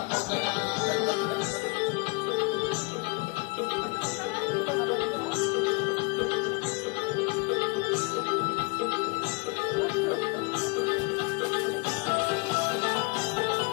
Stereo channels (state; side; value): quieter; right; 29.1 dB